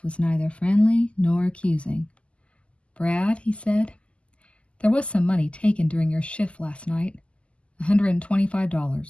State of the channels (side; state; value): right; late; 0.056 ms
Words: was neither friendly nor accusing. "Brad," he said, "there was some money taken during your shift last night.